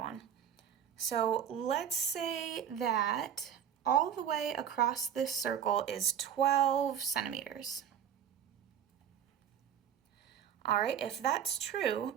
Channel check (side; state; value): left; quieter; 9.0 dB